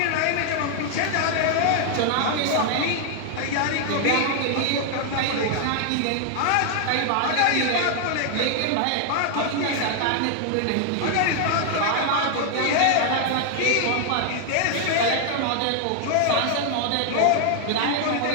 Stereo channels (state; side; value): different; both; correlation 0.00